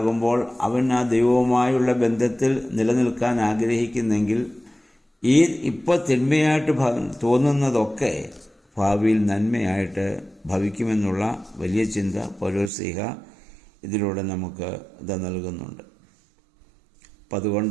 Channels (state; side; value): drops out; left; at 12.7 s